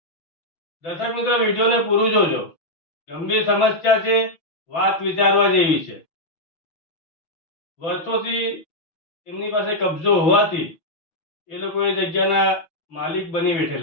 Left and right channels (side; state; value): right; late; 6.1 ms